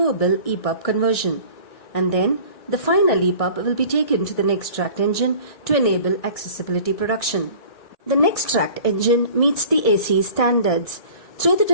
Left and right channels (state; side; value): late; right; 1.6 ms